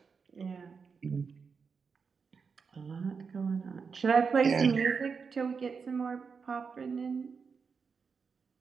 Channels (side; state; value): left; quieter; 5.5 dB